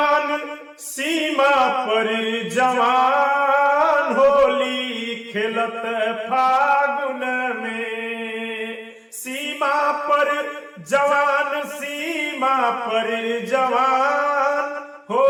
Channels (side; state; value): both; identical; correlation 1.00